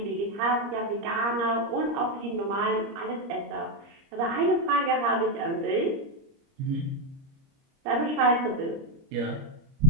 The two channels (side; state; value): left; late; 30 ms